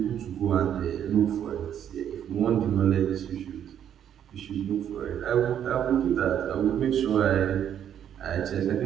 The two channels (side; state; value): left; quieter; 9.6 dB